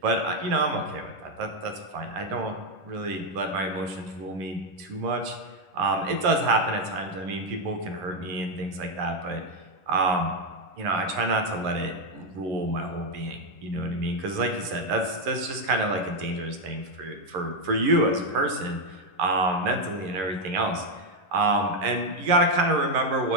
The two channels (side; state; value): left; late; 11 ms